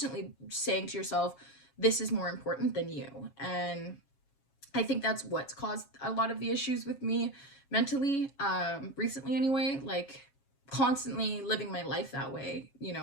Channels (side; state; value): right; late; 7.3 ms